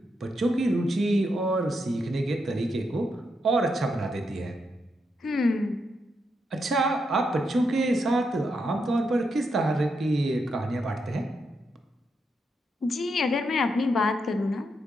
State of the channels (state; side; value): normal; both; correlation 0.82